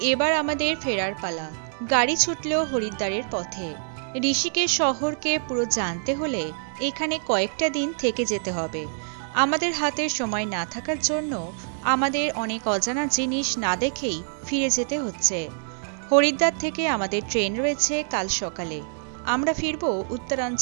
এবার আমাদের ফেরার পালা। গাড়ি ছুটলো হরিদ্বারের পথে। ঋষিকেশ শহরকে পুরো জানতে হলে এখানে কয়েকটা দিন থেকে যেতে হবে। আমাদের হাতে সময় না থাকার জন্য আমাদের অনেক অজানা জিনিস না দেখেই ফিরে যেতে হচ্ছে। হরিদ্বার থেকে আমাদের ট্রেন রয়েছে কাল সকালে। আমরা ফিরবো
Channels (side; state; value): left; silent; 61 dB below the other